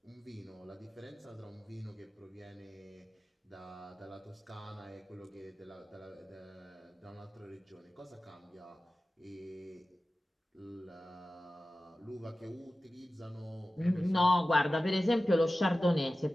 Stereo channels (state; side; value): normal; both; correlation 0.95